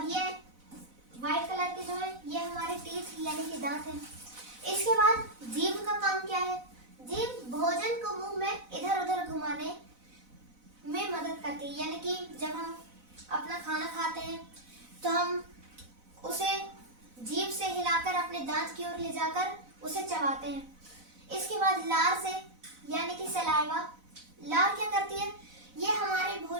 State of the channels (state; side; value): late; left; 4.0 ms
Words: यह व्हाइट कलर के जो है ये हमारे टीथ यानी कि दांत हैं। इसके बाद जीभ का काम क्या है? जीभ भोजन को मुंह में इधर उधर घुमाने में मदद करती है। यानी कि जब हम अपना खाना खाते हैं तो हम उसे जीभ से हिलाकर अपने दांत की ओर ले जाकर उसे चबाते हैं। इसके बाद लार से यानी कि सलाइवा, लार क्या करती है? ये हमारे